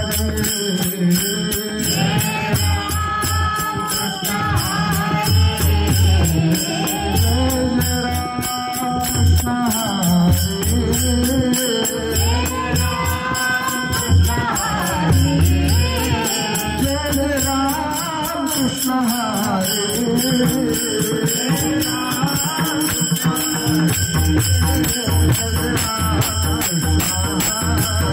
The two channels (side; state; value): both; identical; correlation 1.00